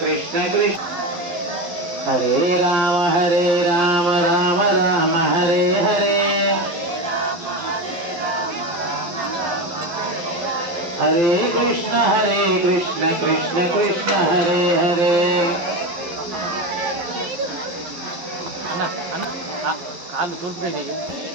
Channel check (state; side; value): late; left; 11 ms